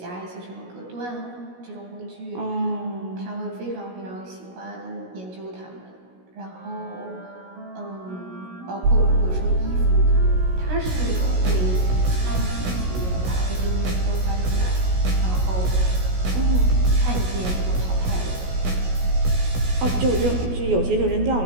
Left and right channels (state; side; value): late; left; 16 ms